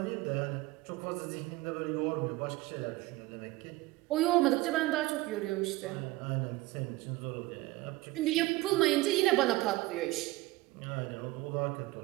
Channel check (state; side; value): quieter; left; 19.8 dB